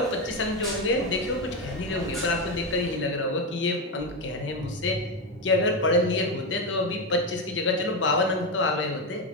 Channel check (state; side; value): normal; both; correlation 0.11